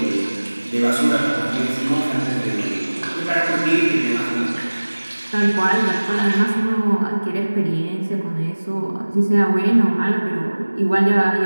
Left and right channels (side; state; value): both; inverted; correlation -1.00